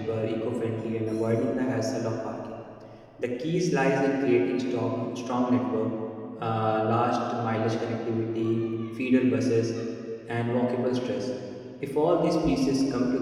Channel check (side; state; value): both; identical; correlation 1.00